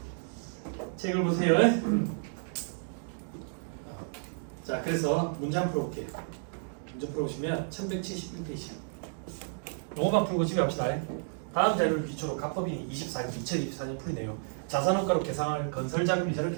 책을 보세요. 자, 그래서 문제 한번 풀어볼게요. 문제 풀어보시면 1171페이지. 요거만 풀고 집에 갑시다. 다음 자료를 기초로 각법인이 2024년 풀이네요. 자산원가로 계산할 건설자금 이자를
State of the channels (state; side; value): silent; left; digital silence